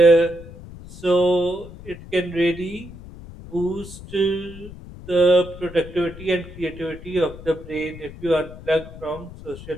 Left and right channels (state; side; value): noise; left; rumble, 15 dB below the sound